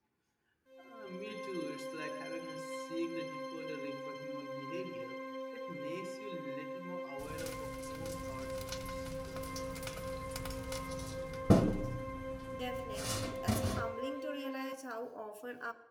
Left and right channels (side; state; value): both; identical; correlation 1.00